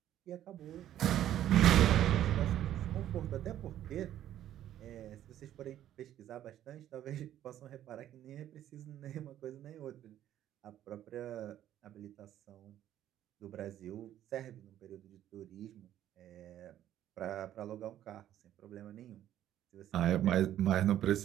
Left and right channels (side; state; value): left; quieter; 11.8 dB